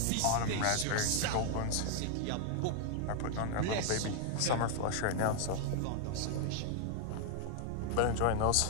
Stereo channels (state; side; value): different; both; correlation 0.00